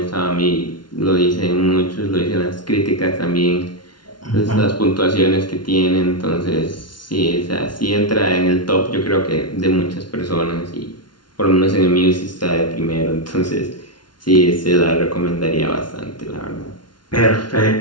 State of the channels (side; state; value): right; late; 0.71 ms